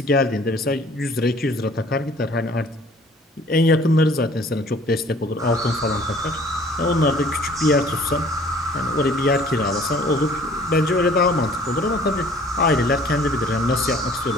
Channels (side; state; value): both; normal; correlation 0.53